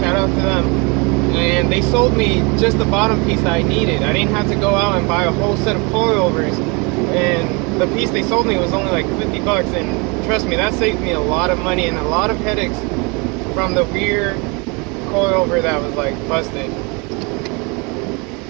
out to them, and they sold me just the bottom piece that I needed. I didn't have to go out and buy a whole set of coilovers, and the piece they sold me was only like 50 bucks, and trust me, that saved me a lot of money and a lot of headaches from the rear coilover that was like busted.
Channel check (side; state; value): left; quieter; 29.7 dB